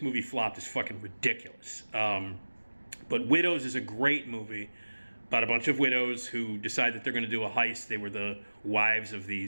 movie flopped is fucking ridiculous. But Widows is a great movie about a bunch of widows who decide that they're going to do a heist. They were the wives of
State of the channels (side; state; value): both; inverted; correlation -1.00